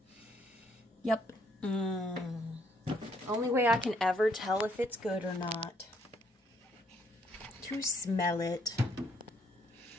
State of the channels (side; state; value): both; normal; correlation 0.69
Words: Yep. Only way I can ever tell if it's good or not. To smell it.